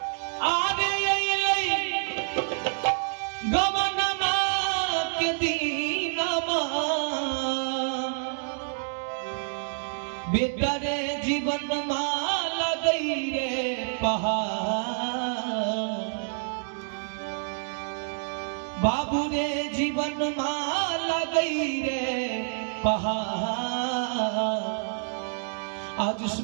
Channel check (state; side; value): silent; left; digital silence